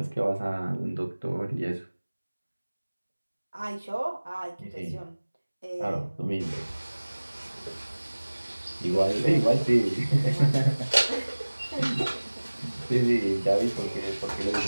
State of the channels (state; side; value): inverted; both; correlation -1.00